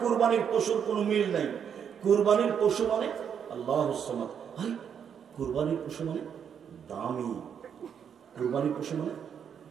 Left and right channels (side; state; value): left; quieter; 7.8 dB